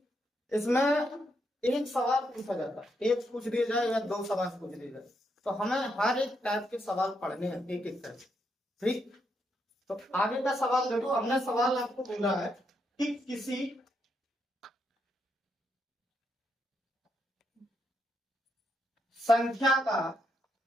इसमें एक सवाल पूछा जाता है, एक पूछ दिया जाए या 2 सवाल पूछ दिए जाए, तो हमें हर एक टाइप के सवाल पढ़ने हैं एक एक करके। ठीक, तो आगे का सवाल देखो। हमने सवाल आपको बोला है कि किसी संख्या का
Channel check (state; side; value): normal; both; correlation 0.79